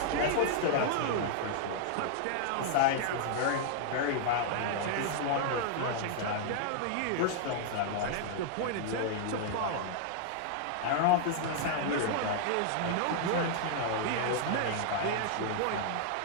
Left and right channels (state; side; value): different; both; correlation -0.01